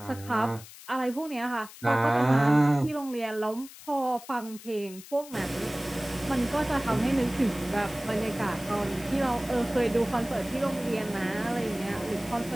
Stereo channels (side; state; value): left; noise; hiss, 17 dB below the sound